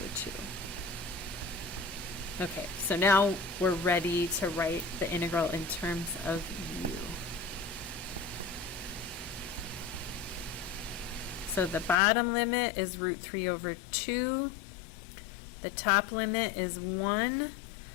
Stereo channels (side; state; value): right; drops out; at 12.0 s